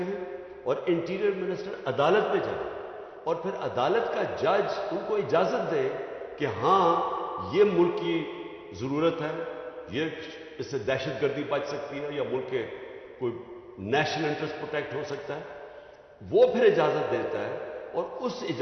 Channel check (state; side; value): identical; both; correlation 1.00